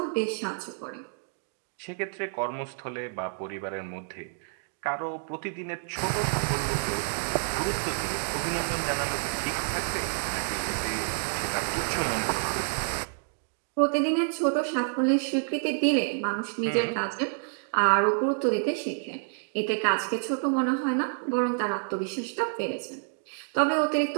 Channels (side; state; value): left; silent; digital silence